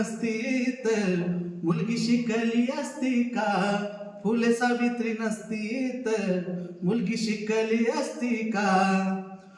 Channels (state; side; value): identical; both; correlation 1.00